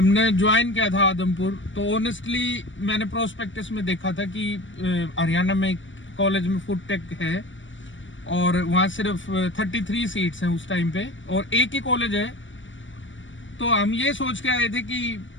ज्वाइन किया था आदमपुर, तो ऑनेस्टली मैंने प्रोस्पेक्टस में देखा था कि हरियाणा में कॉलेज में फूड टेक है और वहाँ सिर्फ 33 सीट्स हैं उस टाइम पे और एक ही कॉलेज है. तो हम ये सोच के आए थे कि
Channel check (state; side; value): late; right; 0.55 ms